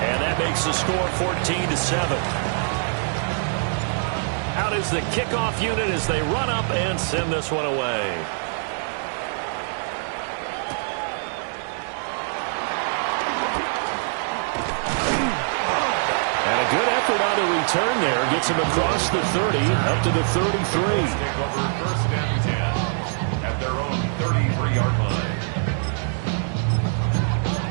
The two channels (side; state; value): left; silent; digital silence